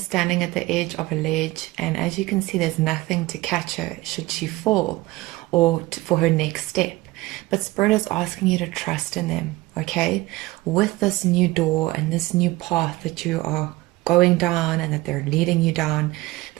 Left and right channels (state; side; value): quieter; left; 19.8 dB